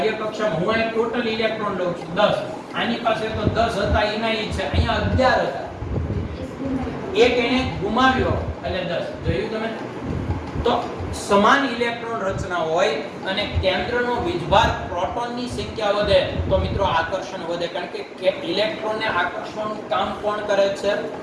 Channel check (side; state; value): both; identical; correlation 1.00